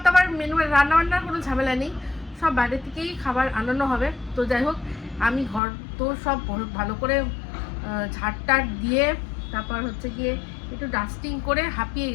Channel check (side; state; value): right; drops out; at 5.6 s